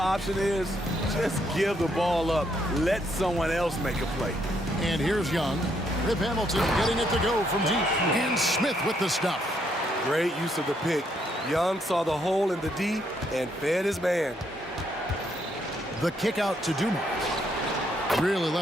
is? Just give the ball up. Let someone else make a play. And here's Young. Rip Hamilton getting it to go from deep. And Smith with the stuff. Great use of the pick. Young saw the hole in the D and fed his man. The kick out to Dumars. Really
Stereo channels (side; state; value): both; normal; correlation 0.73